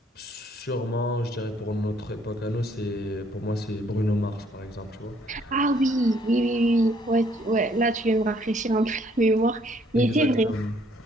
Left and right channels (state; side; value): normal; both; correlation 0.65